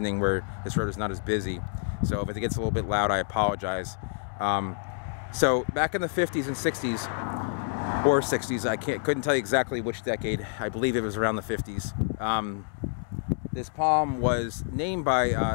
where this road is not as busy, so if it gets a little bit loud I apologize. So back in the 50s and 60s, or 60s, couldn't tell you exactly which decade. I believe it was around the 50s. This palm was named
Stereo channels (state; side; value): silent; right; digital silence